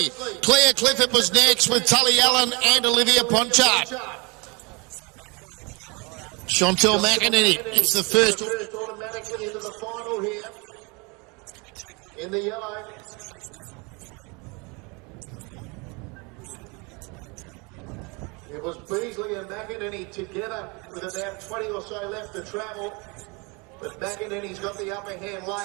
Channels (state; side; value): quieter; left; 29.2 dB